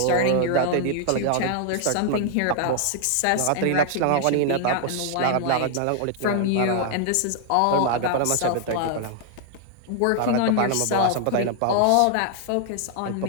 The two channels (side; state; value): both; different; correlation 0.00